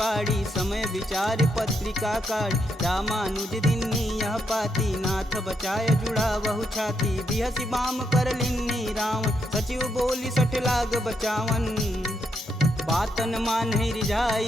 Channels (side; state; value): both; normal; correlation 0.79